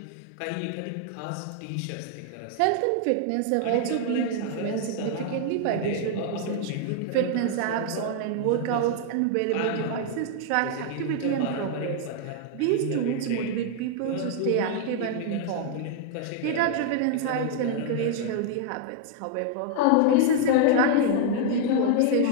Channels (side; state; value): both; different; correlation 0.00